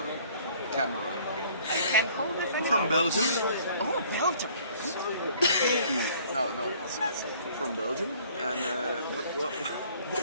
camera. I can hold it From Belgium. Oh, Belgium. No, it's from Belgium. And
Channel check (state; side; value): inverted; both; correlation -0.56